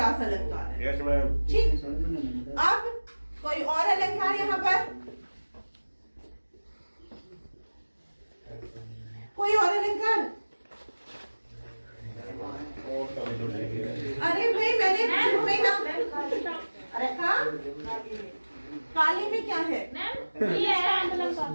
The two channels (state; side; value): inverted; both; correlation -1.00